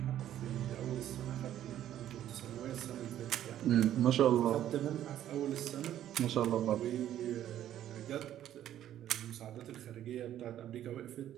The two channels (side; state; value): left; quieter; 11.7 dB